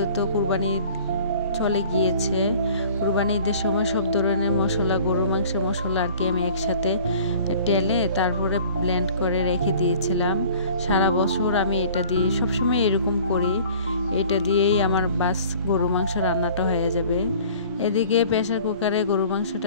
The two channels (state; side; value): inverted; both; correlation -0.49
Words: কুরবানি চলে গিয়েছে, কুরবানি ঈদের সময় সব ধরনের মশলা, গরুর মাংসের মশলা আর কি আমি একসাথে টেলে তারপরে ব্লেন্ড করে রেখে দিয়েছিলাম। সারা বছর আমি এটা দিয়ে সবসময় এরকম করি, এটা দিয়েই আমার বাস গরু মাংস রান্নাটা হয়ে যাবে। এদিকে প্রেসার কুকারে গরু